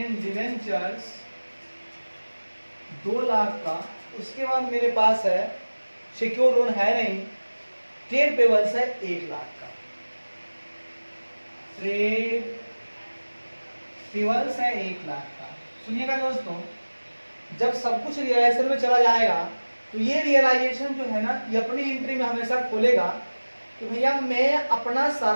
डिवेंचर्स 2 लाख का। उसके बाद मेरे पास है सिक्योर लोन है नहीं, ट्रेड पेबल्स है 1 लाख का, ट्रेड पेबल्स है 1 लाख का। सुनिएगा दोस्तों, जब सब कुछ रियलाइजेशन में चला जाएगा तो ये रियलाइजेशन जो है ना ये अपनी एंट्री में हमेशा खोलेगा कि भैया मैं अपना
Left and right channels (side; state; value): both; inverted; correlation -1.00